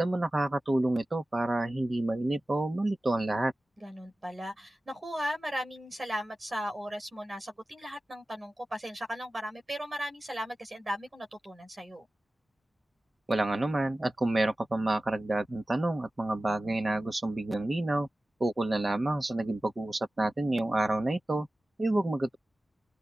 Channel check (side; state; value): both; normal; correlation 0.96